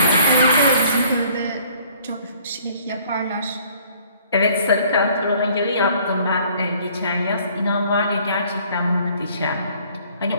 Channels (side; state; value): both; inverted; correlation -0.58